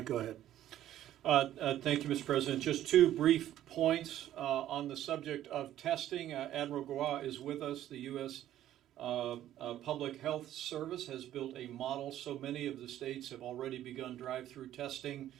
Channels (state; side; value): quieter; left; 12.5 dB